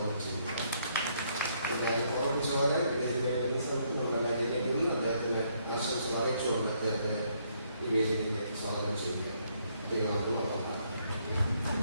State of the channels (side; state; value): both; inverted; correlation -0.71